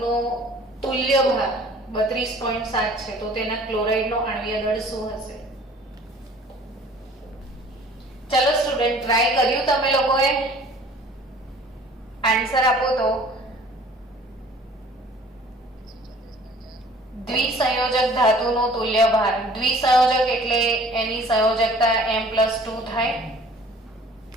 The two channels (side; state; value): both; normal; correlation 0.51